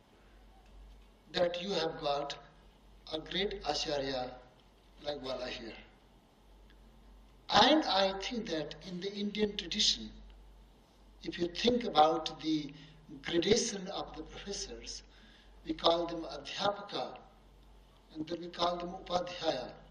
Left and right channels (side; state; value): both; identical; correlation 1.00